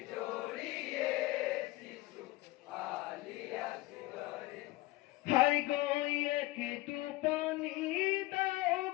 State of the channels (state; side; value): quieter; right; 19.0 dB